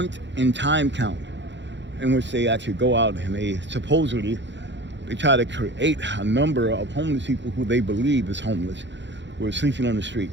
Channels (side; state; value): left; late; 0.52 ms